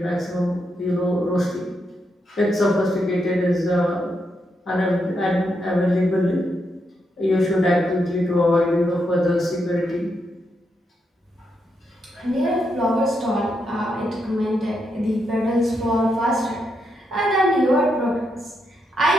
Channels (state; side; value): normal; both; correlation 0.81